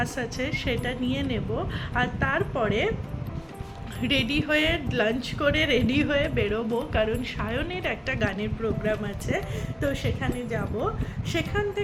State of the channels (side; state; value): both; identical; correlation 1.00